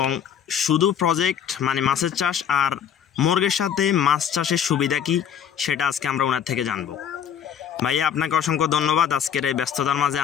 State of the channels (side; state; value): right; quieter; 8.6 dB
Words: শুধু প্রজেক্ট মানে মাছের চাষ আর মুরগের সাথে মাছ চাষের সুবিধা কি সেটা আজকে আমরা ওনার থেকে জানব। ভাইয়া, আপনাকে অসংখ্য ধন্যবাদ আজকের এই ব্যস্ততার মাঝে